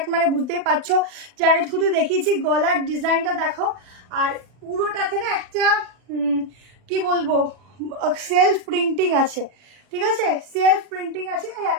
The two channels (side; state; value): left; late; 40 ms